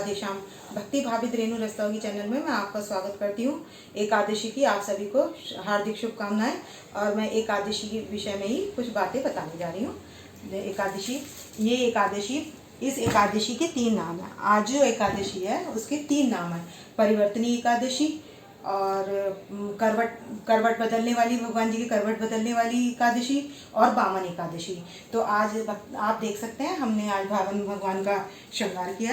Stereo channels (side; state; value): both; identical; correlation 1.00